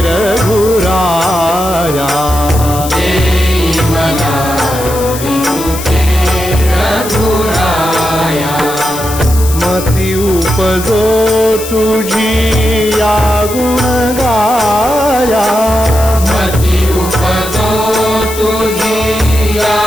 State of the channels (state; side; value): noise; left; hiss, 10 dB below the sound